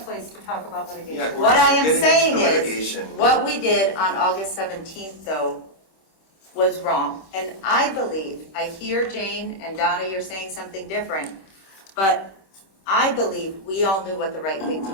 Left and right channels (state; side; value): late; right; 26 ms